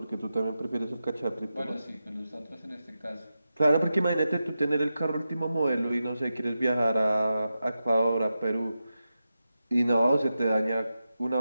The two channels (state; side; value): inverted; both; correlation -0.91